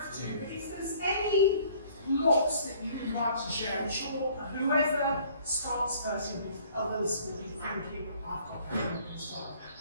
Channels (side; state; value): both; inverted; correlation -0.56